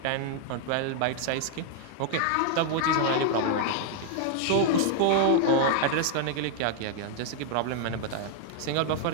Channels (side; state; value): both; different; correlation 0.00